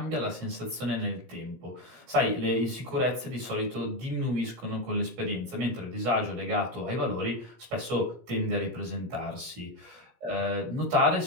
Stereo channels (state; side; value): late; left; 16 ms